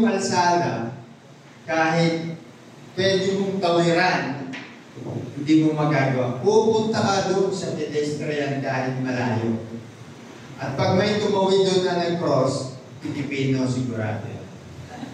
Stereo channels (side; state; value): both; identical; correlation 1.00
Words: kalsada, kahit pwede mong tawiran, hindi mo magagawa. Pupunta ka doon sa pedestrian kahit malayo. At pag may tumawid doon na nag-cross, Pilipino sigurado.